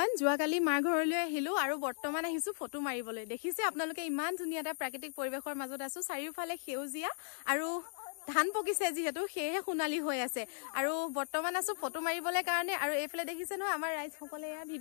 যোৱাকালি মাৰ ঘৰলৈ আহিলো আৰু বৰ্তমান আহিছো ফটো মাৰিবলৈ। দেখিছে আপোনালোকে ইমান ধুনীয়া এটা প্ৰাকৃতিক পৰিবেশৰ মাজত আছো। চাৰিওফালে সেউজীয়া আৰু ধান পকিছে যিহেতু সেয়ে সোণালী হৈ আছে আৰু বৰ্তমান আছো ফটো মাৰিবলৈ কাৰণে। আৰু এইফালে দেখিছে নহয় আমাৰ ৰাইজসকলে এয়া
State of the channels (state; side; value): silent; right; 54 dB below the other